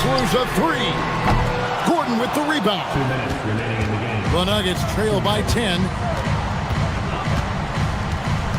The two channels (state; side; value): identical; both; correlation 1.00